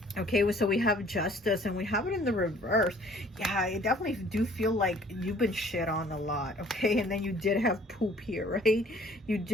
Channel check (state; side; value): normal; both; correlation 0.56